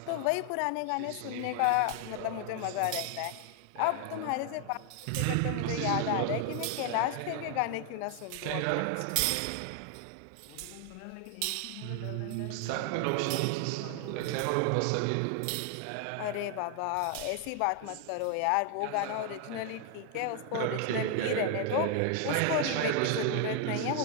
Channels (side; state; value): both; different; correlation 0.00